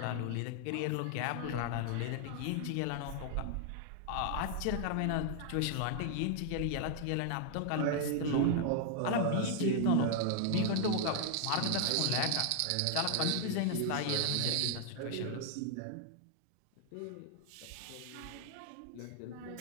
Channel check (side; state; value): both; different; correlation 0.00